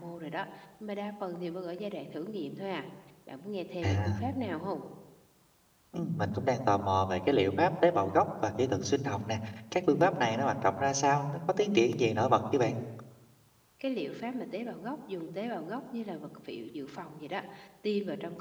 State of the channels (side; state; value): both; identical; correlation 1.00